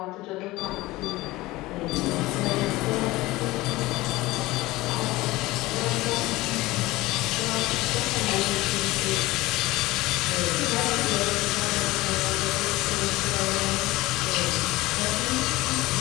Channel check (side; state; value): right; quieter; 19.3 dB